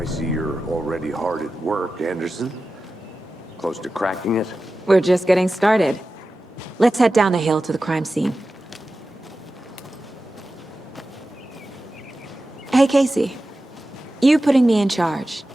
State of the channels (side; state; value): both; normal; correlation 0.94